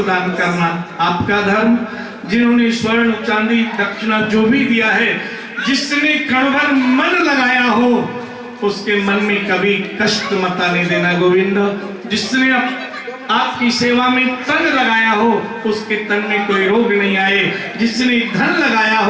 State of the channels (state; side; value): identical; both; correlation 1.00